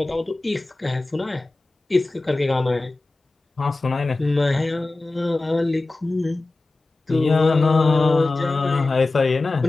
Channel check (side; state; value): right; quieter; 3.1 dB